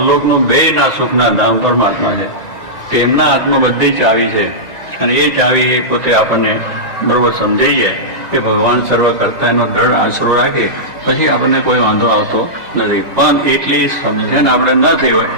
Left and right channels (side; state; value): left; late; 2.0 ms